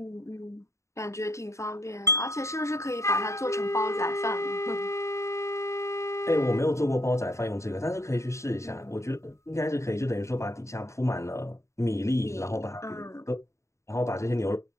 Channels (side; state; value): right; late; 0.14 ms